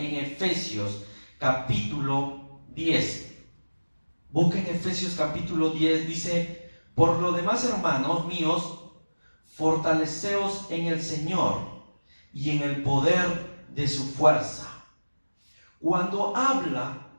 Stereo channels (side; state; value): both; inverted; correlation -1.00